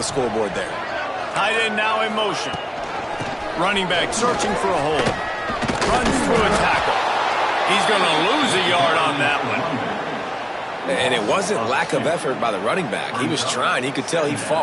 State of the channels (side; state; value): both; identical; correlation 1.00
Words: scoreboard there. Tight end now in motion. Running back searching for a hole. Runs through a tackle. He's going to lose a yard on that one. And it wasn't lack of effort by the running back. He was trying. He could tell he